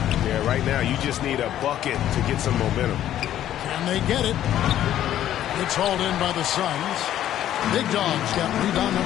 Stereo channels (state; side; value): quieter; right; 11.8 dB